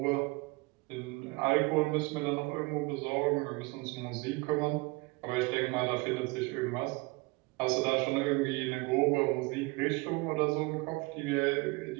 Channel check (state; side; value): quieter; left; 25.6 dB